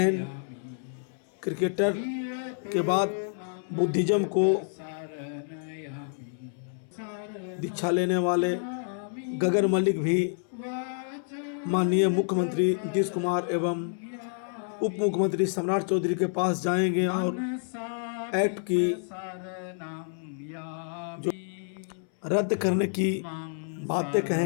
क्रिकेटर के बाद बुद्धिज्म को दीक्षा लेने वाले गगन मलिक भी माननीय मुख्यमंत्री नीतीश कुमार एवं उप मुख्यमंत्री सम्राट चौधरी के पास जाएंगे और एक्ट की जो रद्द करने की बातें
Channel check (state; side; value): silent; right; 59 dB below the other